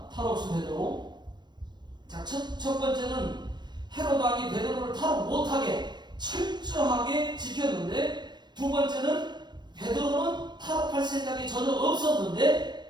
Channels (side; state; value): left; late; 0.21 ms